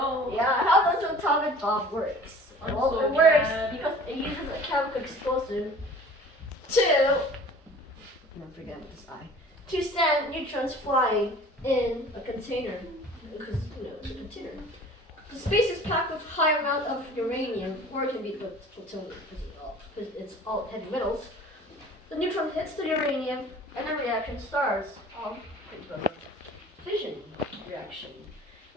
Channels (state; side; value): normal; both; correlation 0.46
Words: Yeah, how does an atomic bomb works? I'm Well, so it works mad. because it uses a chemical explosive to, don't forget this I, to send neutrons flying in a container, because it's a container. The space is packed with high amount of uranium, or it can be plutonium because it's all heavy metals. The neutron hits the uranium, and the reaction starts. Fission reaction.